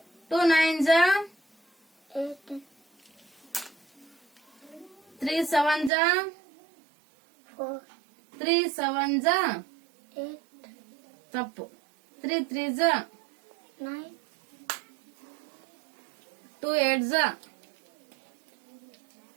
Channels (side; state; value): left; drops out; at 5.9 s